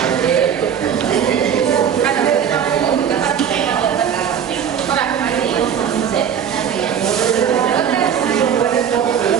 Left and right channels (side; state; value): left; quieter; 8.3 dB